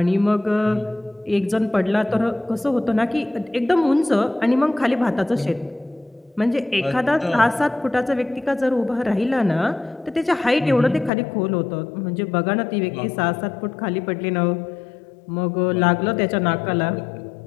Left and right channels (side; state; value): right; drops out; at 11.1 s